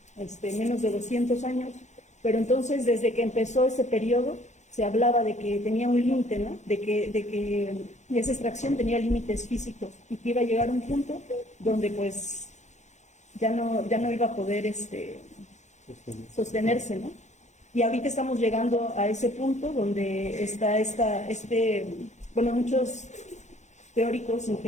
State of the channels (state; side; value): late; right; 0.34 ms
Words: menos de 200 años, pero entonces desde que empezó ese periodo se hablaba de que tenía un límite, ¿no? De que esa extracción tenía límites físicos y que iba a llegar a un punto donde pues ya no iba a poder sostenerse, ¿no? Y ahorita estamos llegando a ese punto donde está muchos teóricos,